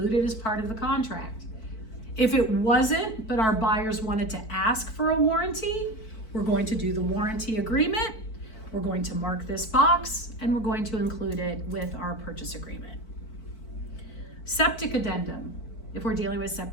it as part of the contract. If it wasn't, but our buyers wanted to ask for a warranty, we're going to do the warranty agreement. We're going to mark this box and we're going to include it with our purchase agreement. Septic addendum. If we're dealing with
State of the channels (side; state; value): right; late; 4.5 ms